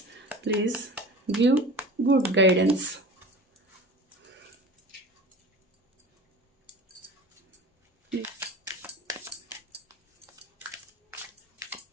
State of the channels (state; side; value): normal; both; correlation 0.37